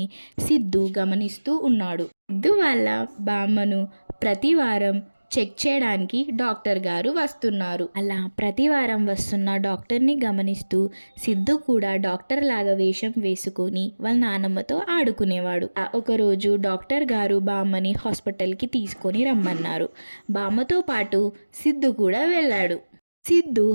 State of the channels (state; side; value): inverted; both; correlation -1.00